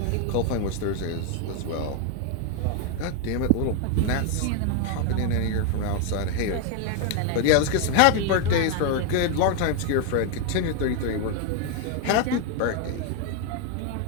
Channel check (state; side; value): different; both; correlation 0.01